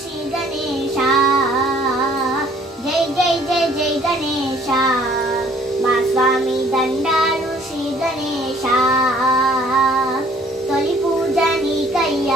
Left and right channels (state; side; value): normal; both; correlation 0.58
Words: శ్రీ గణేశ జై జై జై జై గణేశ మా స్వామి దండాలు శ్రీ గణేశ తొలి పూజ నీకయ్య